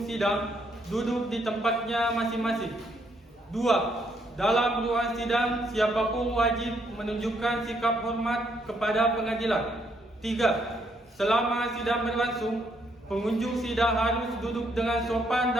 sidang duduk di tempatnya masing-masing. 2. Dalam ruang sidang, siapapun wajib menunjukkan sikap hormat kepada pengadilan. 3. Selama sidang berlangsung, pengunjung sidang harus duduk dengan sopan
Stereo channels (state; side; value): normal; both; correlation 0.72